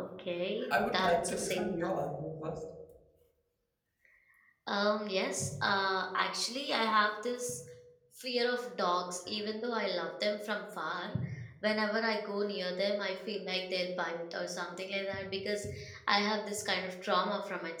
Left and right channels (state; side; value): identical; both; correlation 1.00